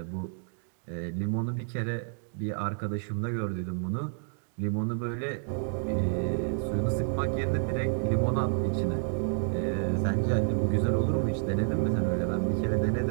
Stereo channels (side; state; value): left; silent; digital silence